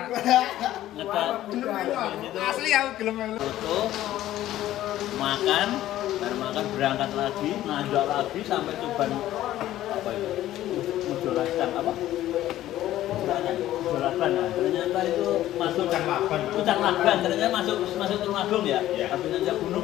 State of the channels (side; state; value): right; quieter; 13.8 dB